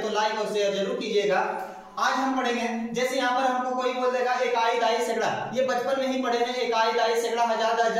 लाइक और शेयर जरूर कीजिएगा। आज हम पढ़ेंगे, जैसे यहाँ पर हमको कोई बोल देगा इकाई, दाई, सैकड़ा, ये बचपन में ही पढ़े हैं। इकाई, दाई, सैकड़ा, हजार,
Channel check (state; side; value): identical; both; correlation 1.00